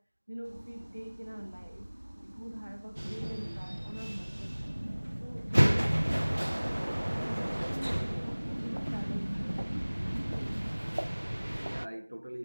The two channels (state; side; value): inverted; both; correlation -1.00